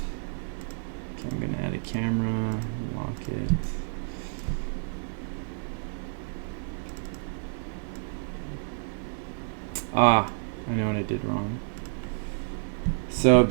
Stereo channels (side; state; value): left; silent; digital silence